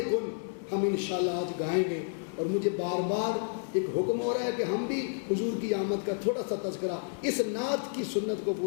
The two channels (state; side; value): silent; right; 57 dB below the other